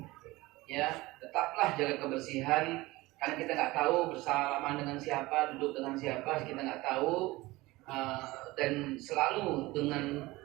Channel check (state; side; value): quieter; left; 20.2 dB